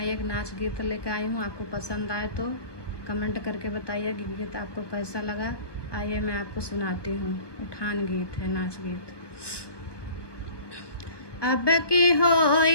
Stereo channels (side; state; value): right; late; 1.2 ms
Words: एक नाच गीत लेकर आई हूँ। आपको पसंद आए तो कमेंट करके बताइए कि गीत आपको कैसा लगा। आइए मैं आपको सुनाती हूँ। उठान गीत है, नाच गीत। अब की